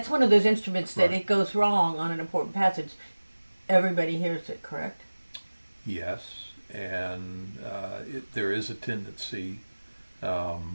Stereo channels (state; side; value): inverted; both; correlation -1.00